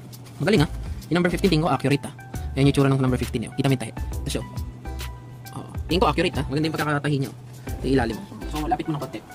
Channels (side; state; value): both; identical; correlation 1.00